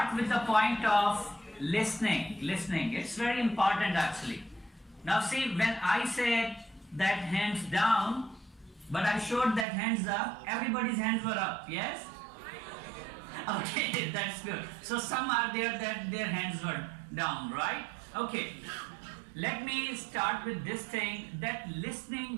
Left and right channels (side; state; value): left; drops out; at 9.7 s